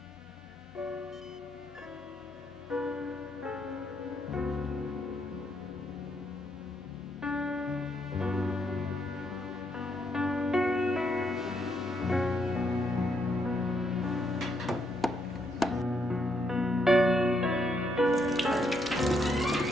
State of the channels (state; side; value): normal; both; correlation 0.75